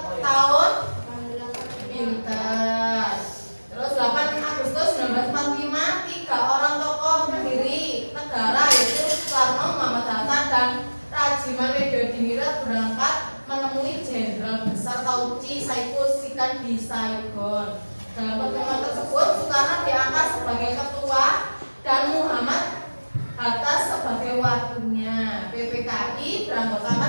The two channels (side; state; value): both; inverted; correlation -1.00